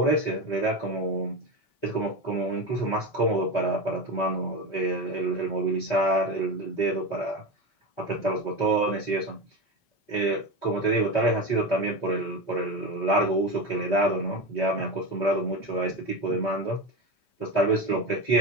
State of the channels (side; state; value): right; late; 5.2 ms